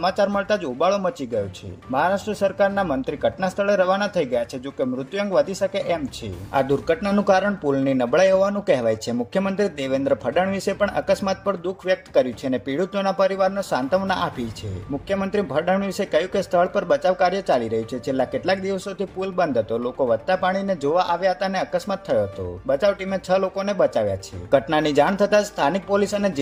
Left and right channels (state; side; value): identical; both; correlation 1.00